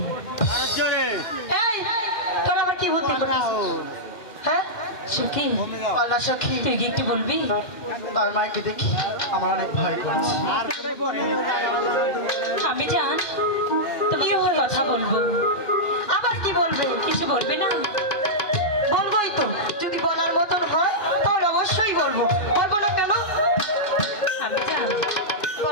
এই তোর আবার কি বুদ্ধি করছিস? হ্যাঁ সখী, আল্লাহ সখী, তুই কি একটু বলবি? তার মাকে দেখি আমার অনেক ভয় করছে। আমি জান তুমি কথা বলবো। আবার কি বলবে? কিছু বলবে না? বলবোই তো, যদি বলার মতন হয় তাহলে অবশ্যই বলবো। বলবো না কেন? আমি জান,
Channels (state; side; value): late; right; 2.4 ms